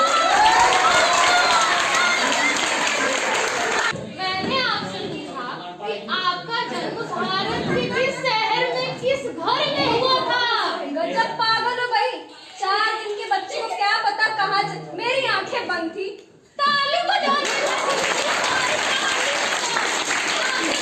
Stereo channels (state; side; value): identical; both; correlation 1.00